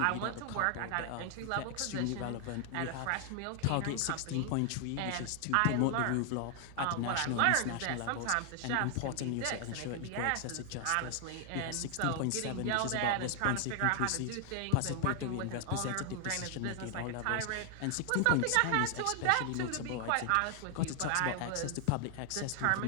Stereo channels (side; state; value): both; different; correlation 0.00